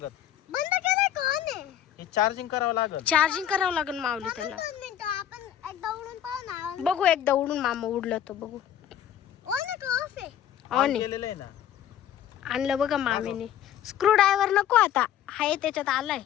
बंद केलंय का on आहे? हे चार्जिंग करावं लागेल. चार्जिंग करावं लागेल माऊली त्याला. 2 मिनिटं आपण एकदा उडून पाहू ना. बघू एकदा उडून मामा उडलं तर बघू. ऑन आहे का ऑफ आहे? ऑन आहे. केलेलं आहे ना. आणलं बघा मामीने. स्क्रू ड्रायव्हर नको आता. हाय त्याच्यात आलाय.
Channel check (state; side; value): quieter; right; 10.6 dB